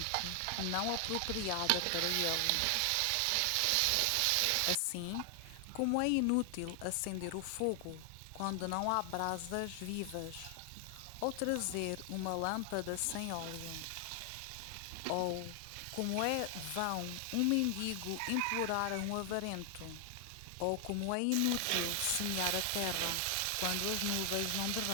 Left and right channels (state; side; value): different; both; correlation 0.00